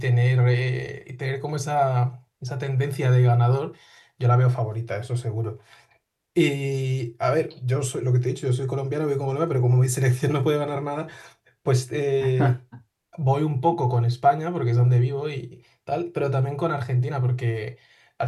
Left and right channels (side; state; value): both; identical; correlation 1.00